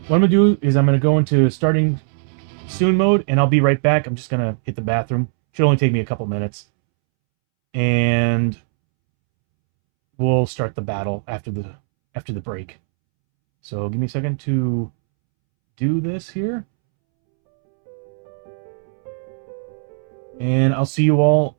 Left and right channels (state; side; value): silent; left; 66 dB below the other